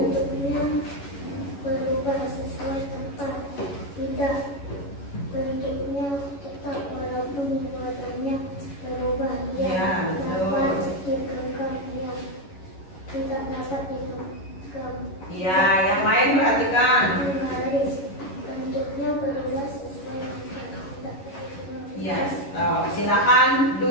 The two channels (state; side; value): late; right; 11 ms